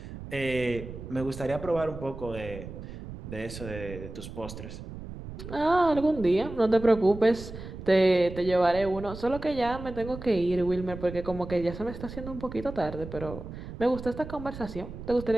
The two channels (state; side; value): noise; right; rumble, 11 dB below the sound